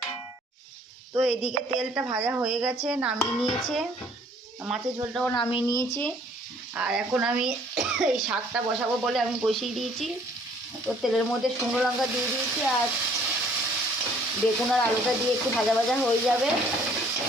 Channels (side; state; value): both; normal; correlation 0.59